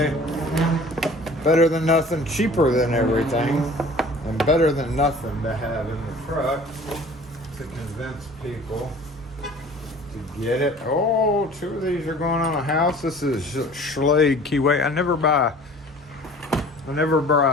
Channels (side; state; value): both; normal; correlation 0.47